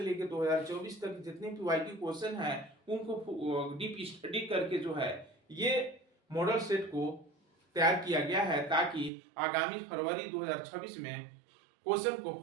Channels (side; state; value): left; drops out; at 9.1 s